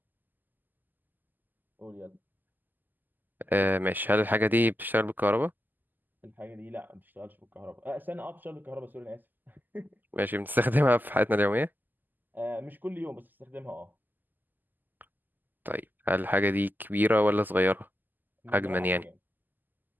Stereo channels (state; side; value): late; left; 0.087 ms